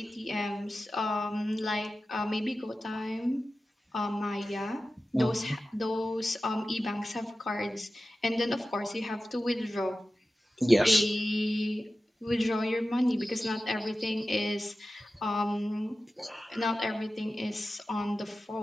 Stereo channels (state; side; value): normal; both; correlation 0.94